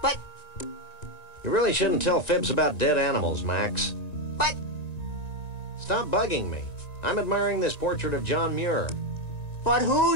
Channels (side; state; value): right; late; 1.9 ms